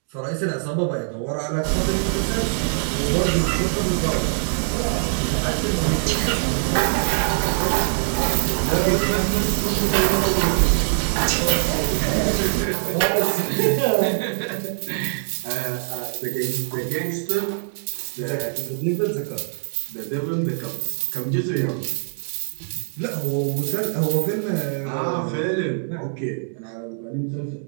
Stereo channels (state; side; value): silent; left; digital silence